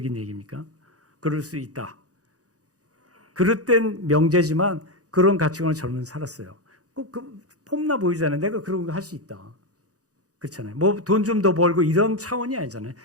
얘기입니까? 그럴 수 있다. 그릇된 명제지만 그런 가치관을 저는 살았어요. 폼나 보이잖아요. 내가 그런 거 할 수 있다. 그렇잖아요. 뭐 돈 좀 더 벌고 이런 차원이 아니잖아요.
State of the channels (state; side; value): late; left; 0.67 ms